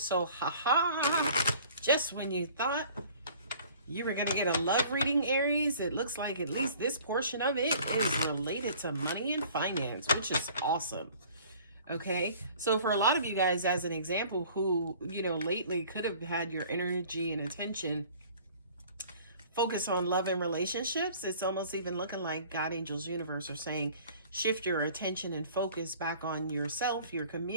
just when you thought you were going to get a love reading, Aries, it looks like at least this portion of it is related to money and finance, which is awesome. Okay, so for a lot of you guys, as an example, who, lately could have had your energy and attention focus on love and relationships, it's almost even looking like God, angels, universe are saying, shift your attention and focus back on yourself, your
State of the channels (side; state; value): both; inverted; correlation -0.50